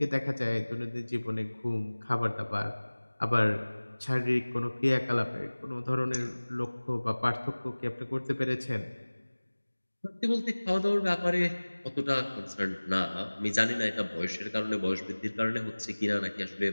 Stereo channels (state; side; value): inverted; both; correlation -1.00